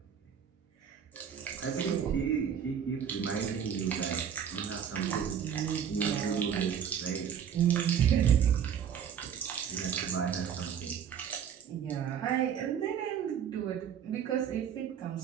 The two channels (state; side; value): quieter; left; 8.3 dB